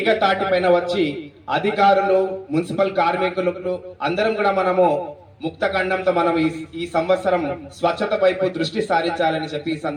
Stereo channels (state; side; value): identical; both; correlation 1.00